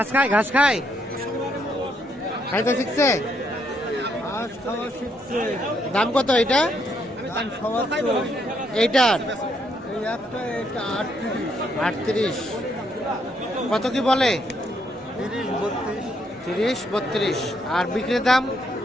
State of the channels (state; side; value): normal; both; correlation 0.74